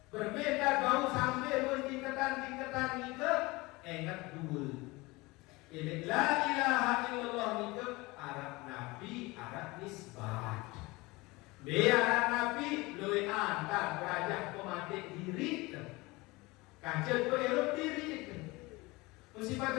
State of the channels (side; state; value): right; quieter; 22.8 dB